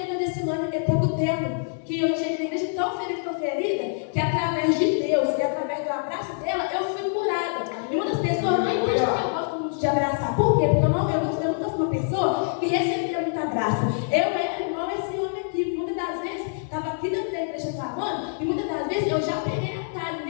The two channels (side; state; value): right; silent; 61 dB below the other